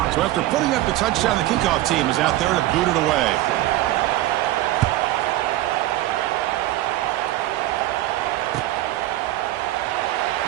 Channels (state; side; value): quieter; left; 15.6 dB